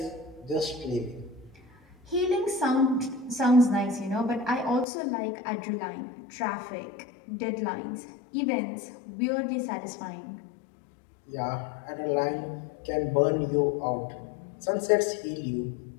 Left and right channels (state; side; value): drops out; right; at 4.9 s